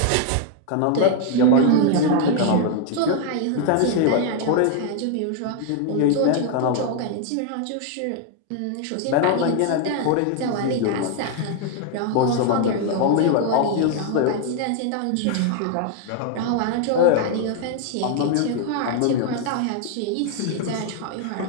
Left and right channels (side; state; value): both; different; correlation 0.00